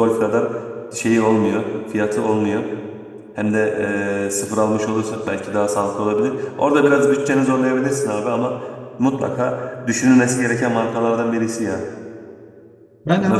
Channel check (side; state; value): both; identical; correlation 1.00